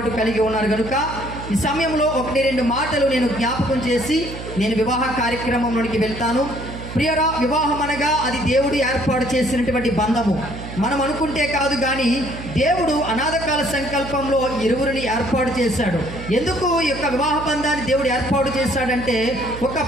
కలిగి ఉన్నారు. కనుక ఈ సమయంలో 1-2 మాటలు నేను జ్ఞాపకం చేసి నేను వివాహ కార్యక్రమంలోనికి వెళ్తాను. ప్రియరా, వివాహం అనగా అది దేవుడు ఏర్పాటు చేసినటువంటి బంధము. మనం అనుకుంటే కాదు కానీ దేవుడు అనాథకాల సంకల్పంలో ఇరువురిని ఏర్పాటు చేశాడు. ఎందుకు ఈ యొక్క వివాహ బంధాన్ని దేవుడు ఏర్పాటు చేశాడంటే ఒక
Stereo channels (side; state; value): right; noise; hum, 10 dB below the sound